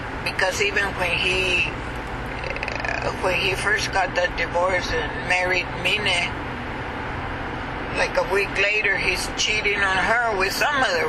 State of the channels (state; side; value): identical; both; correlation 1.00